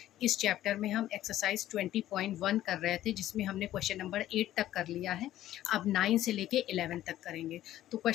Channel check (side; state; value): right; quieter; 13.5 dB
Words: इस चैप्टर में हम एक्सरसाइज 20.1 कर रहे थे, जिसमें हमने क्वेश्चन नंबर 8 तक कर लिया है। अब 9 से लेके 11 तक करेंगे। तो